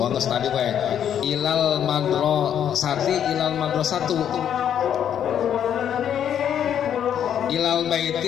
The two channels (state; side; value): quieter; right; 9.4 dB